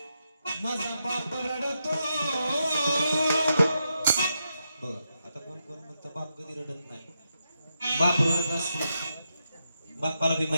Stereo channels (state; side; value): inverted; both; correlation -0.85